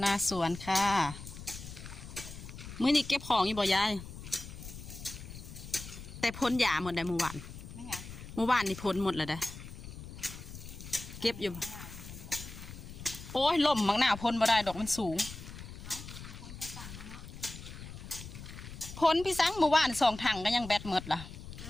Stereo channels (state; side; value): noise; left; rumble, 12 dB below the sound